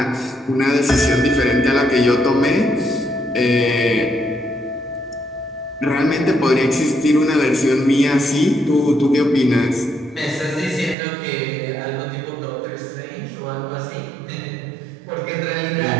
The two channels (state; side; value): drops out; left; at 11.0 s